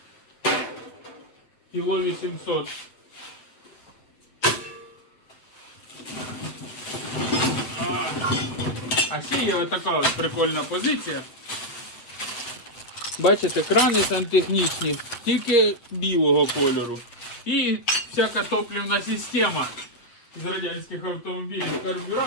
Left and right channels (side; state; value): right; late; 8.2 ms